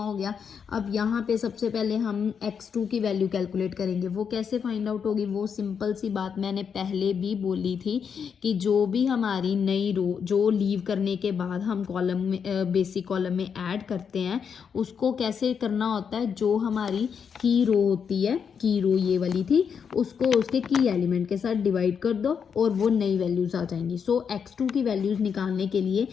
गया। अब यहाँ पे सबसे पहले हम x2 की वैल्यू कैलकुलेट करेंगे। वो कैसे फाइंड आउट होगी, वो सिंपल सी बात मैंने पहले भी बोली थी कि जो भी हमारी नई रो जो लीव करने के बाद हम कॉलम में बेसिक कॉलम में ऐड करते हैं उसको कैसे करना होता है, जो हमारी की रो होती है, की रो ये वाली थी, उसको उसके की एलिमेंट के साथ डिवाइड कर दो और वो नई वैल्यूज आ जाएंगी। सो x2 की वैल्यूज निकालने के लिए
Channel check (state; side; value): quieter; right; 6.9 dB